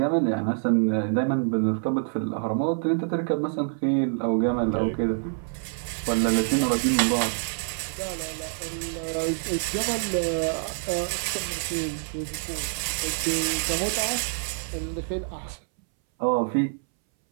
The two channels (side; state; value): left; silent; 61 dB below the other